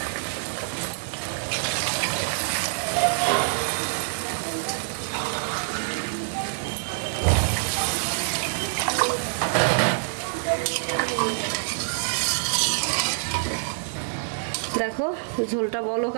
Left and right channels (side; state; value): left; silent; digital silence